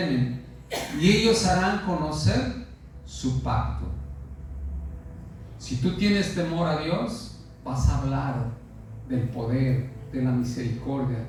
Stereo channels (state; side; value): identical; both; correlation 1.00